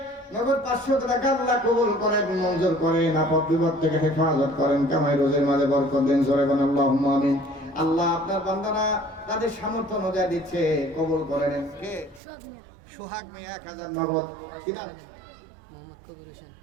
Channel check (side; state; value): left; drops out; at 12.2 s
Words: নগদ 500 টাকা আল্লাহ কবুল করেন, মঞ্জুর করেন, আপদ বিপদ থেকে হেফাজত করেন, কামাই রোজের মাঝে বরকত দেন, জোরে বলেন আল্লাহুম্মা আমিন। আল্লাহ আপনার বান্দারা তাদের সামর্থ্য অনুযায়ী দিচ্ছে, কবুল করে নেন। কে? সোহাগ মিয়া 1000 নগদ। কি নাম? মোহাম্মদ কবির হোসেন।